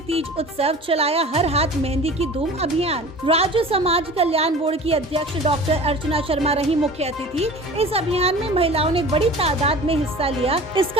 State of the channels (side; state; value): both; normal; correlation 0.40